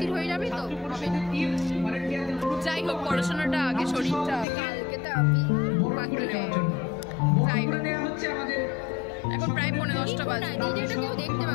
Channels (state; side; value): drops out; right; at 4.5 s